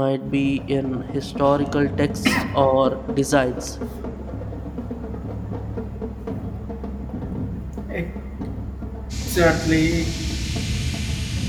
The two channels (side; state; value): both; identical; correlation 1.00